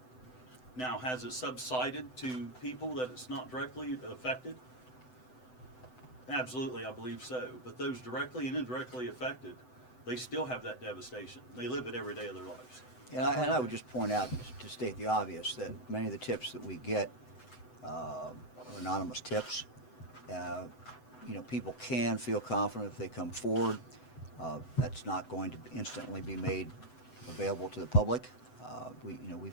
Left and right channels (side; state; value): right; late; 7.9 ms